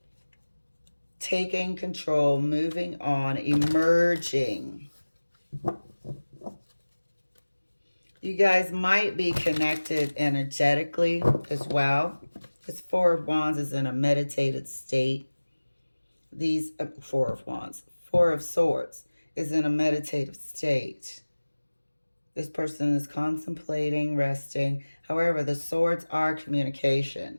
Taking control, moving on, emerging. You guys might be connected energetically as well. This Four of Wands is in a meditated state. These Four of Wands, Four of Swords is in a meditative state. This person is contemplating, resting. However, the swords are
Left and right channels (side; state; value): both; inverted; correlation -1.00